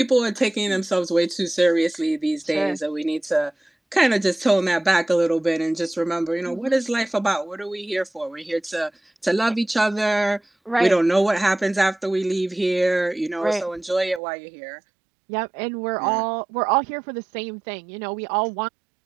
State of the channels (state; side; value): drops out; left; at 14.2 s